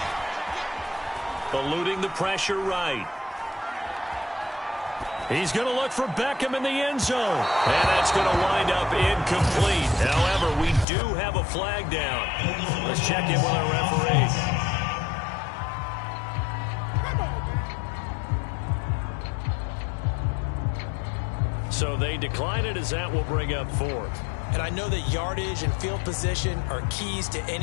Eluding the pressure right. He's going to look for Beckham in the end zone. And that's going to wind up incomplete. However, we do have a flag down. Let's check in with our referee. So they decline it as that will bring up 4th. And I know that yardage and field position are keys to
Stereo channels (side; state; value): right; drops out; at 10.9 s